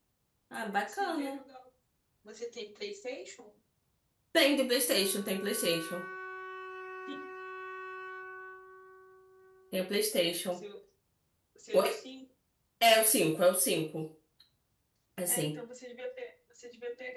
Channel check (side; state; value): both; identical; correlation 1.00